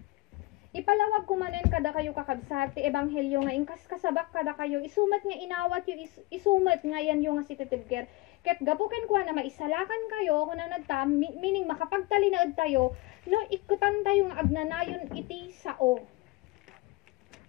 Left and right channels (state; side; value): quieter; right; 21.3 dB